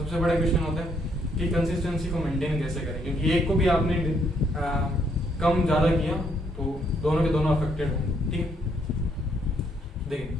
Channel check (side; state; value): both; normal; correlation 0.71